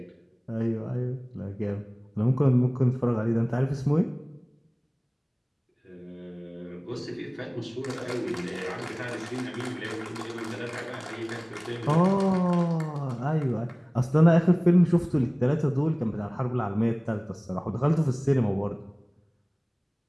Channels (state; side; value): identical; both; correlation 1.00